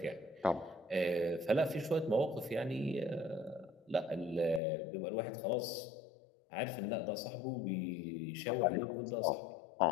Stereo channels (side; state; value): right; drops out; at 4.6 s